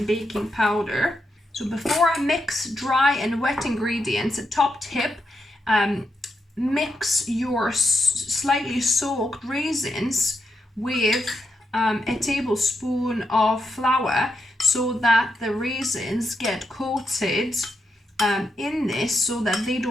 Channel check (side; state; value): both; normal; correlation 0.83